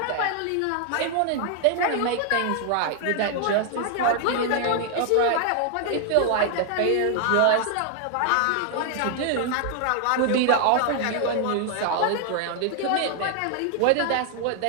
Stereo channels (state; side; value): different; both; correlation 0.00